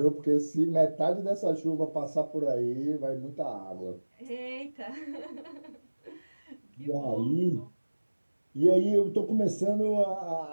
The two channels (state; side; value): inverted; both; correlation -1.00